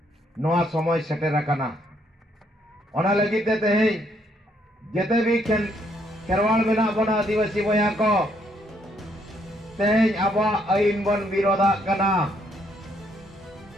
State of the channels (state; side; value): normal; both; correlation 0.71